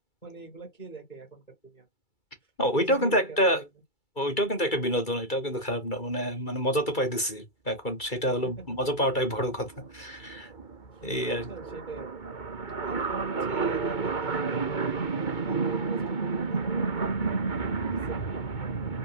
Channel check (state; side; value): late; right; 2.3 ms